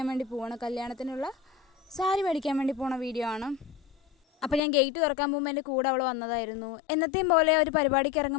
വേണ്ടി പോവാണ്. കല്യാണത്തിനുള്ള സാരി മേടിക്കാൻ വേണ്ടി പോണ വീഡിയോ ആണ്. അപ്പോൾ ഞാൻ ഗേറ്റ് തുറക്കാൻ പോകുമ്പോൾ എൻ്റെ കൂടെ അവൾ വന്നതായിരുന്നു. എന്നത്തെയും പോലെ ഒരു പരിപാടിക്ക്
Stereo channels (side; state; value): right; drops out; at 4.6 s